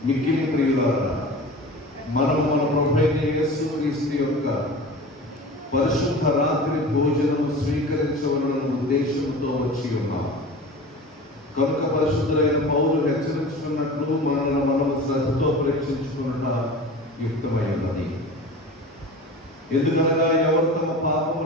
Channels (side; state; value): both; normal; correlation 0.36